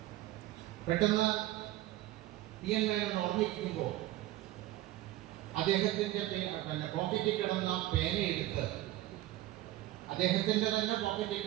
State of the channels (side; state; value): left; quieter; 15.7 dB